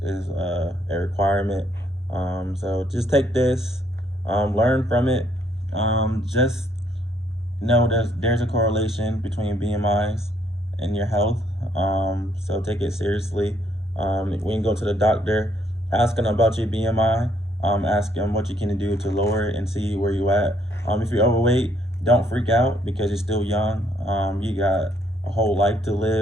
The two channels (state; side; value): normal; both; correlation 0.69